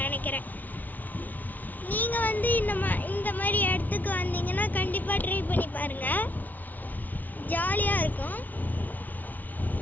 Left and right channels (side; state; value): right; late; 0.080 ms